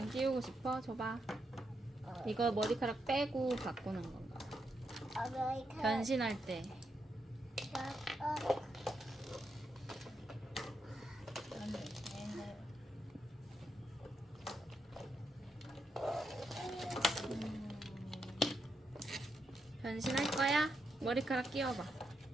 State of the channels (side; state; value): both; normal; correlation 0.82